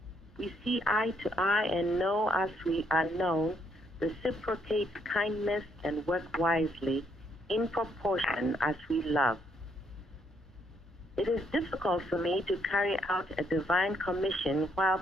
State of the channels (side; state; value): both; normal; correlation 0.72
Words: We see eye to eye and know as we are known, reciprocates kindness and work wisely in proportion as we love. It is difficult for me to carry out a divine commission while